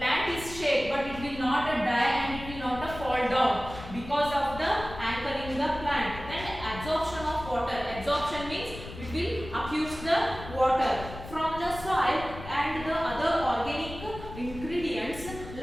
is shake, but it will not die and it will not fall down because of the anchoring the plant. Then absorption of water. Absorption means it will accuse the water from the soil, and the other organic ingredients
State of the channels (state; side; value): noise; left; rumble, 13 dB below the sound